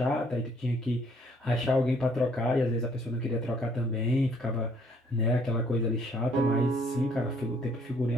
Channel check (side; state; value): both; normal; correlation 0.63